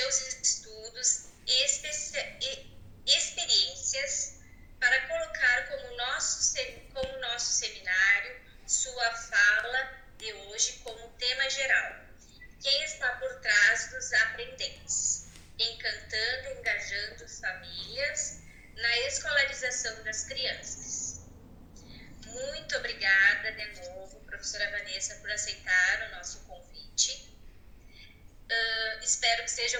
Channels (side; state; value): both; identical; correlation 1.00